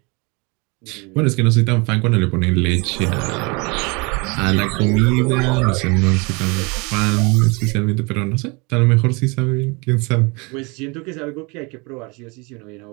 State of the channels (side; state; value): left; quieter; 28.9 dB